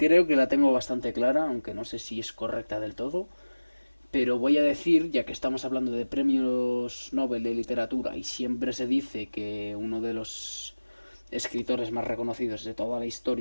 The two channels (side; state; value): both; inverted; correlation -1.00